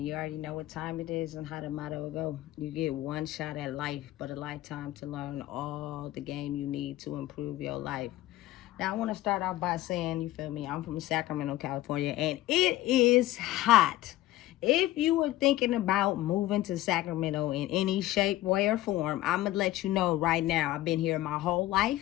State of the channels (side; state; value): right; quieter; 15.8 dB